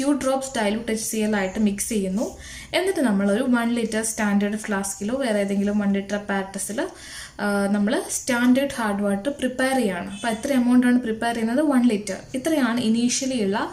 ഡ്രോപ്സ് ഡൈലൂട്ട് HCl ആയിട്ട് മിക്സ് ചെയ്യുന്നു. എന്നിട്ട് നമ്മളൊരു 1 ലിറ്റർ സ്റ്റാൻഡേർഡ് ഫ്ലാസ്കിലോ വേറെ ഏതെങ്കിലും 1 ലിറ്റർ പാരറ്റസിൽ നമ്മൾ സ്റ്റാൻഡേർഡ് ഹാർഡ് വാട്ടർ പ്രിപ്പയർ ചെയ്യുകയാണ്. അപ്പോൾ എത്ര എമൗണ്ടാണ് പ്രിപ്പയർ ചെയ്യുന്നത്? 1 ലിറ്റർ. ഇത്രയാണ് ഇനീഷ്യലി ഉള്ള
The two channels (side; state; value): both; identical; correlation 1.00